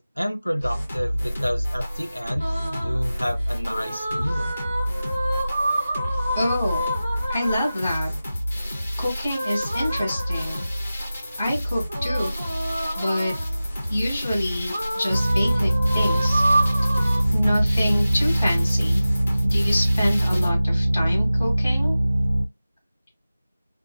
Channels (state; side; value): inverted; both; correlation -0.96